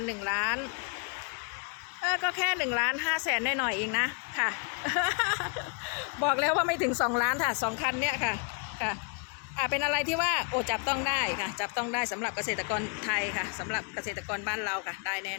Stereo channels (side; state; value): right; quieter; 38.9 dB